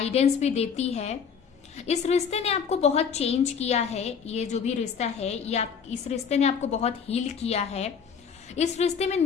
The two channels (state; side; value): quieter; right; 6.7 dB